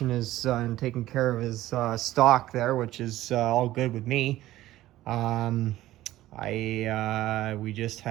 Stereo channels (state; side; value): quieter; left; 15.3 dB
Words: his and taking care of his stock there, which is all good with me. We just